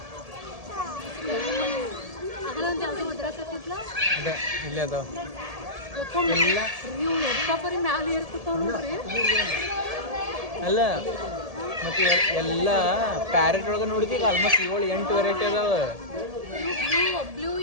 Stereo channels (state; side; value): late; left; 1.7 ms